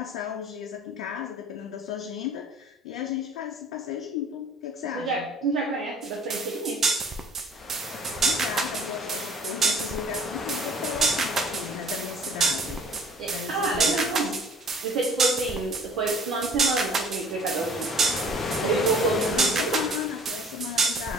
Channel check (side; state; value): both; normal; correlation 0.49